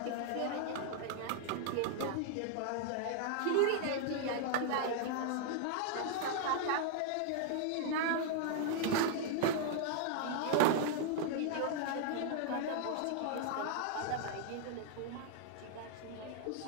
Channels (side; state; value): both; different; correlation -0.01